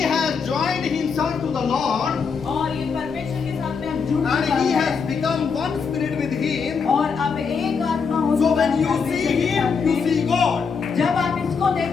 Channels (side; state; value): right; quieter; 5.7 dB